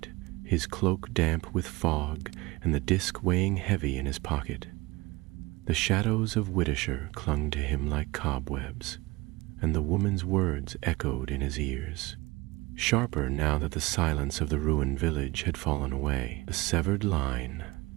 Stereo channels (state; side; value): quieter; left; 22.3 dB